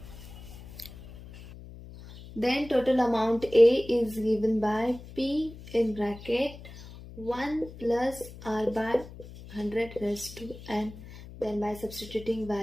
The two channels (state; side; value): noise; left; hum, 16 dB below the sound